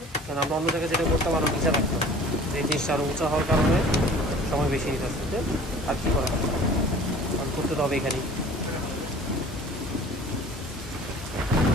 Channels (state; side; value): normal; both; correlation 0.47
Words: কারণ আমরা অন্য জায়গায় যেটা করতে পারবো নিচে রাখতাম, এই জিনিসটা আরো উঁচা হওয়ার কারণে সময় বেশি নিতে আসছে। আর কি করা হবে, করতে তো হবে এখানেই।